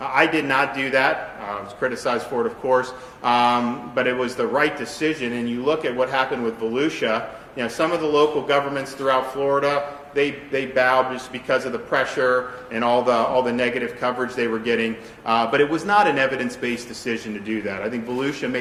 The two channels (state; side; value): identical; both; correlation 1.00